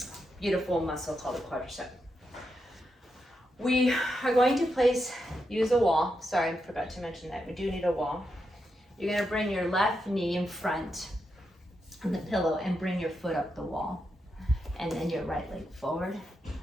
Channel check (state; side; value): normal; both; correlation 0.85